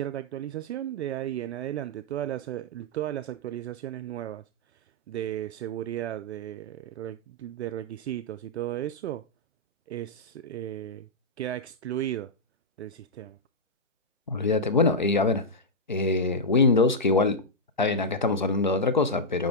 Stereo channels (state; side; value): normal; both; correlation -0.07